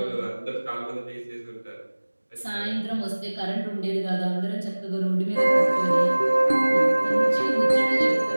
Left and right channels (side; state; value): both; inverted; correlation -1.00